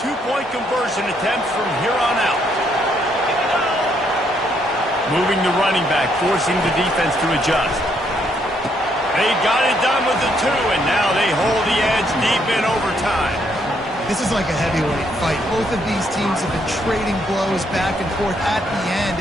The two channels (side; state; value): both; normal; correlation 0.72